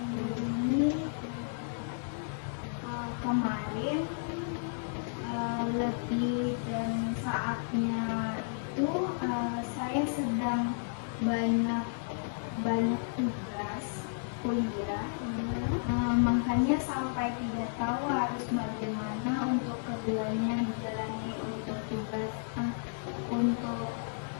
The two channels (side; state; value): right; silent; 56 dB below the other